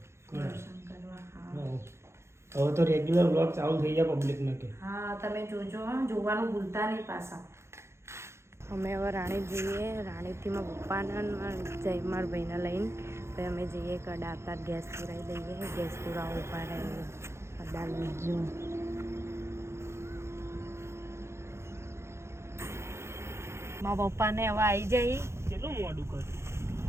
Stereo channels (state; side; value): late; left; 0.13 ms